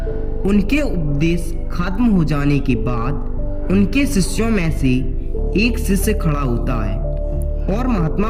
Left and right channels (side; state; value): both; identical; correlation 1.00